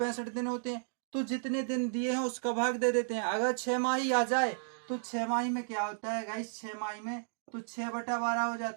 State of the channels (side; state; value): left; silent; digital silence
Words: दिन होते हैं। तो जितने दिन दिए हैं उसका भाग दे देते हैं। अगर 6 माही आ जाए तो 6 माही में क्या होता है गाइस? 6 माही में तो 6/12 हो